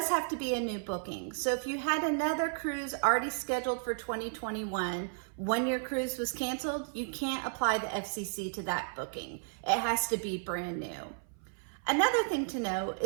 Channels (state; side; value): silent; left; 56 dB below the other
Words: have to be a new booking. So if you had another cruise already scheduled for 2021, when your cruise was canceled, you can't apply the FCC to that booking. It has to be brand new. Another thing to know